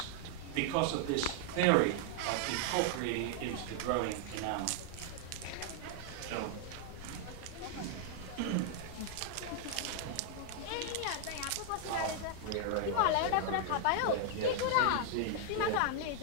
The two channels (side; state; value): both; different; correlation 0.00